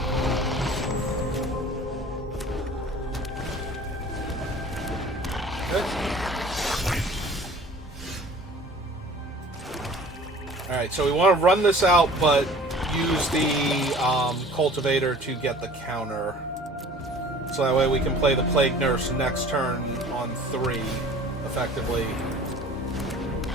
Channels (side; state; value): both; normal; correlation 0.47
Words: Alright, so we want to run this out, but use the cultivator to get the counter. So that way we can play the Plague Nurse next turn on 3, effectively.